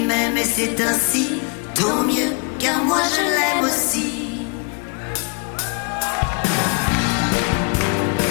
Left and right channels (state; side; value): quieter; right; 34.8 dB